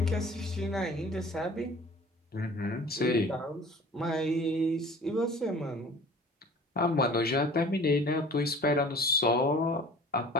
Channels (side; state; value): both; normal; correlation 0.45